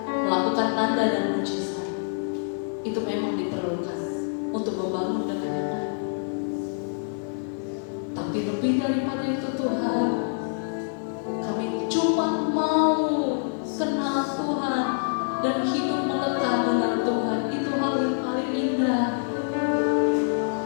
melakukan tanda dan mujizat. Itu memang diperlukan untuk membangun dengan yang lain. Tapi lebih daripada itu Tuhan, kami cuma mau kenal Tuhan dan hidup melekat dengan Tuhan. Itu hal yang paling indah.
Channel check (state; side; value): silent; right; digital silence